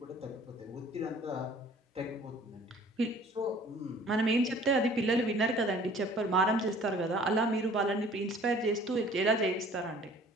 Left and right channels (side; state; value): both; normal; correlation 0.51